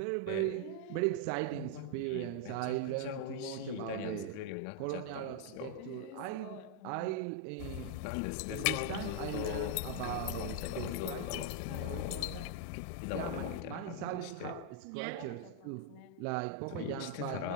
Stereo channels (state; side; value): different; both; correlation 0.00